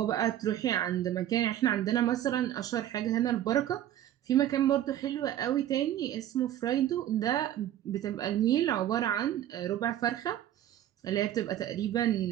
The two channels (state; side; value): quieter; left; 12.0 dB